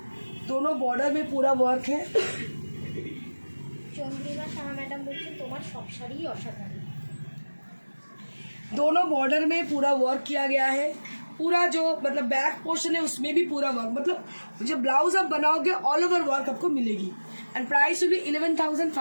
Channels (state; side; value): inverted; both; correlation -1.00